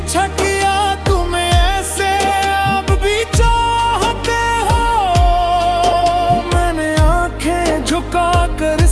किया तुम्हें ऐसे अब भी चाहते हो, मैंने आंखें झुकाकर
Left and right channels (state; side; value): identical; both; correlation 1.00